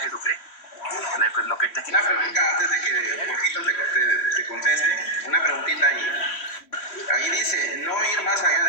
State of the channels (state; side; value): late; right; 3.0 ms